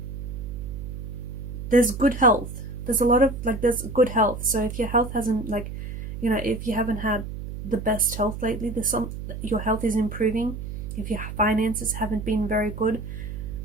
There's good health. There's a lot of there's good health. So if your health hasn't if you haven't had the best health lately, your health is improving. If your finances haven't been very good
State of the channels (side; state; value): right; noise; hum, 8 dB below the sound